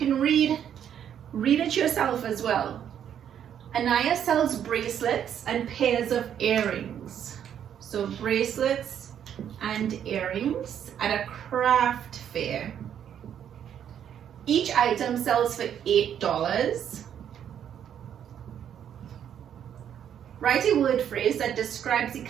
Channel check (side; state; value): left; quieter; 9.3 dB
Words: read it yourself as well. Anaya sells bracelets and pairs of earrings. So bracelets and earrings at a craft fair. Each item sells for $8. Write a word phrase that describes the